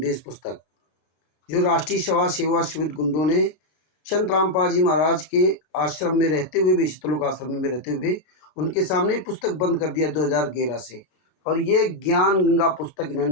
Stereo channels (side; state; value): right; late; 33 ms